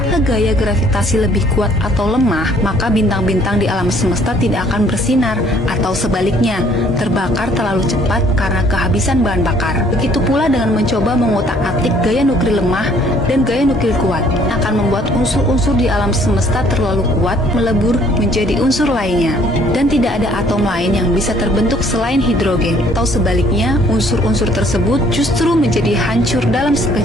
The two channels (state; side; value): normal; both; correlation 0.61